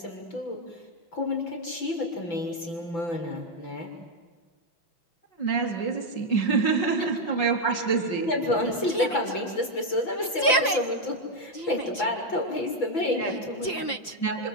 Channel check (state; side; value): late; right; 5.8 ms